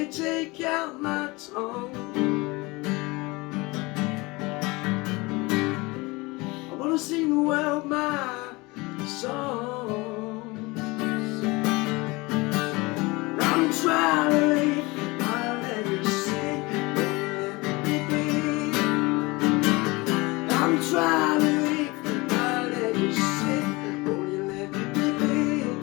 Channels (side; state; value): right; quieter; 23.8 dB